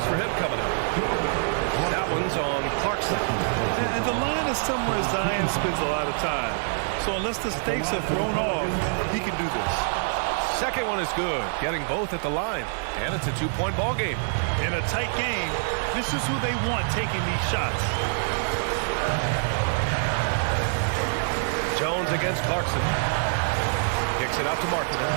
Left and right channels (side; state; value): left; silent; digital silence